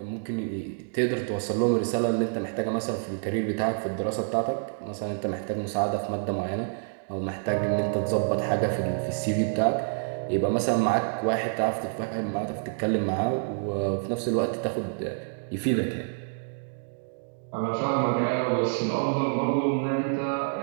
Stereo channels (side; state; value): left; silent; digital silence